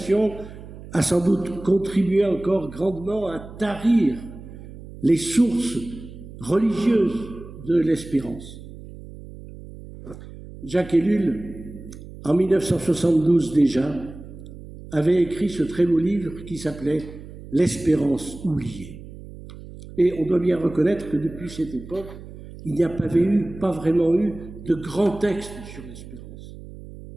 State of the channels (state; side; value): noise; right; hum, 15 dB below the sound